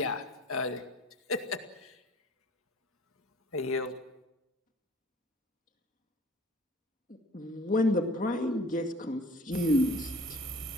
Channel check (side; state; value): both; normal; correlation 0.50